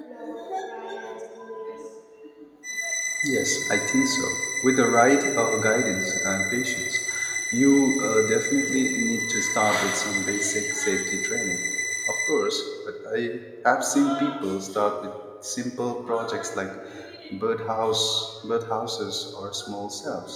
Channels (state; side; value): identical; both; correlation 1.00